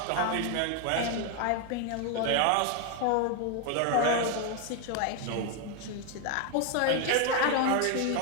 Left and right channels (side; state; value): both; different; correlation 0.01